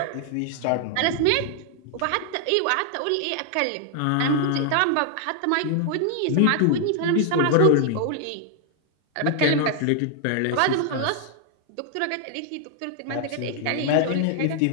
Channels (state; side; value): different; both; correlation 0.00